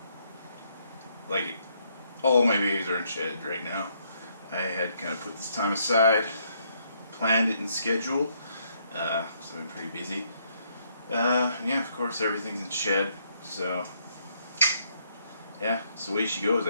like, all my babies are in shed right now. I had kind of put this time aside, planned it in schedule, so I've been pretty busy. Yeah, of course everything's in shed, so yeah, it's the way she goes,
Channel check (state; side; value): inverted; both; correlation -0.72